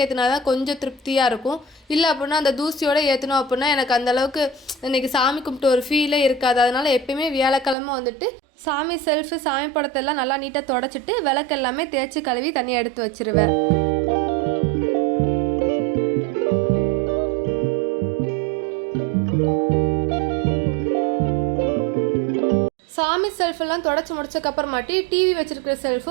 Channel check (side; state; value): left; drops out; at 7.8 s